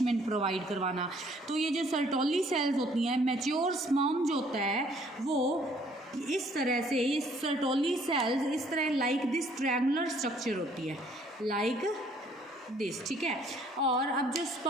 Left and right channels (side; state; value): both; normal; correlation 0.61